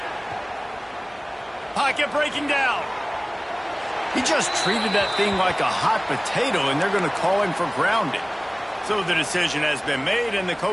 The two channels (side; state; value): both; identical; correlation 1.00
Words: Pocket breaking down. He just treated that thing like a hot potato, and they're going to call him for grounding. So the decision has been made, and the